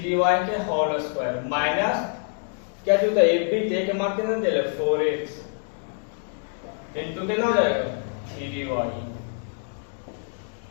के होल स्क्वायर माइनस क्या चाहिए होता है ab। तो a का मान कितना दे ले 4x इंटू कितना हो जाएगा 3y।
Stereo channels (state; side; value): silent; right; digital silence